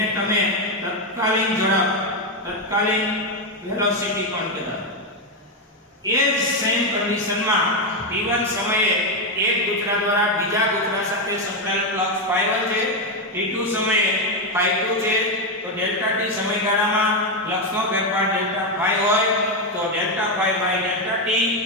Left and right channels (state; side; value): normal; both; correlation 0.07